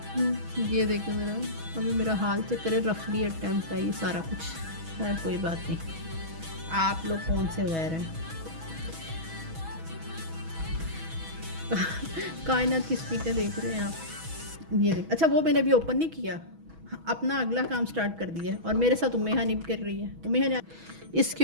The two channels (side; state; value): left; late; 6.2 ms